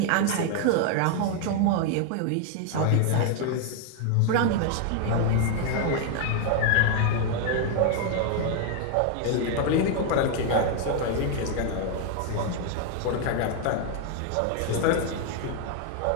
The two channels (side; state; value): both; different; correlation 0.00